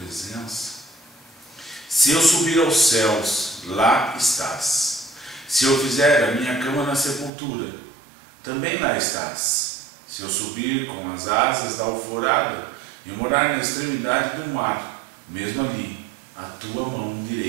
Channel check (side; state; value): left; drops out; at 7.3 s